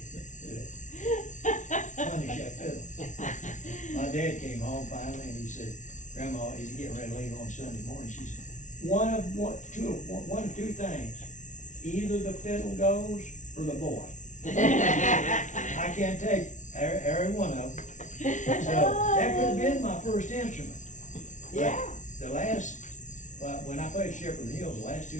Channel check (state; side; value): late; right; 0.37 ms